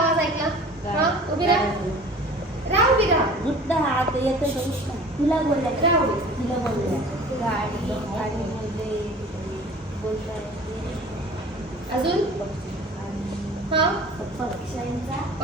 ऐकला? हा, उभी राहा. राहा, उभी राहा. उठला हात येतं का उठला? तिला बोलल्या. राहा उभी. तिला बोलल्या. गाडी बोलताय. अजून हा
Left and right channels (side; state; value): both; normal; correlation 0.44